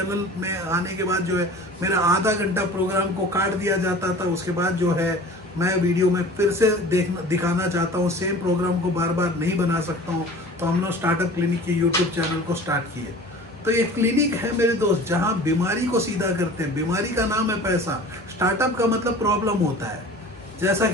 में आने के बाद जो है मेरा आधा घंटा प्रोग्राम को काट दिया जाता था। उसके बाद जो है मैं वीडियो में फिर से दिखाना चाहता हूँ, सेम प्रोग्राम को बार बार नहीं बना सकता हूँ। तो हम लोग स्टार्टअप क्लिनिक के यूट्यूब चैनल को स्टार्ट किए। तो ये क्लिनिक है मेरे दोस्त, जहाँ बीमारी को सीधा करते हैं। बीमारी का नाम है पैसा, स्टार्टअप का मतलब प्रॉब्लम होता है। जैसा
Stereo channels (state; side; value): normal; both; correlation 0.42